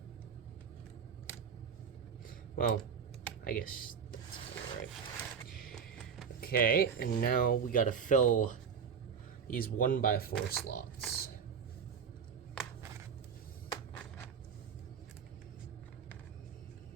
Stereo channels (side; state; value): left; quieter; 6.9 dB